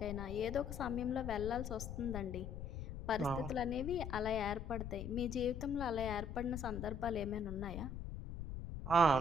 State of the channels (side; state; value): left; noise; rumble, 7 dB below the sound